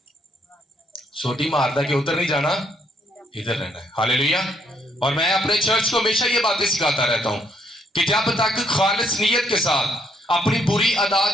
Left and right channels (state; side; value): normal; both; correlation 0.71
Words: سوٹی ماردا کہ ادھر نہیں جانا, ادھر رہنا ہے. ہاللیلویا. اور میں اپنے چرچ کو ہمیشہ یہ باتیں سکھاتا رہتا ہوں کہ جب تک خالص نیت کے ساتھ اپنی بری